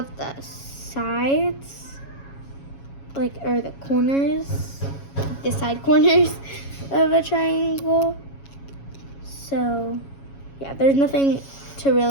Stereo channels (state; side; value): late; right; 7.2 ms